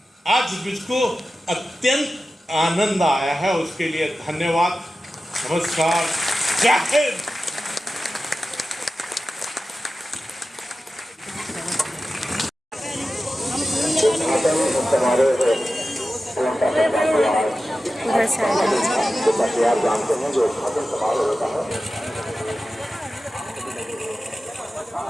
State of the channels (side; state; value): both; normal; correlation 0.94